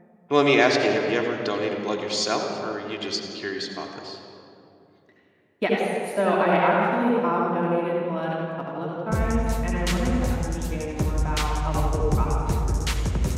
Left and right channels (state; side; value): identical; both; correlation 1.00